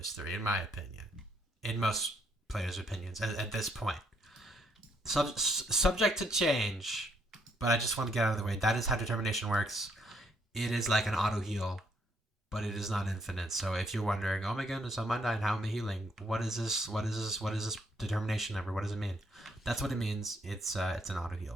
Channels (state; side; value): normal; both; correlation 0.72